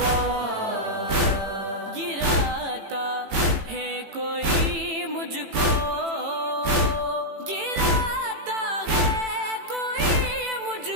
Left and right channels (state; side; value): late; left; 18 ms